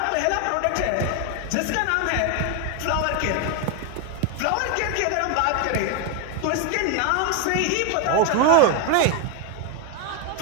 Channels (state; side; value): different; both; correlation 0.01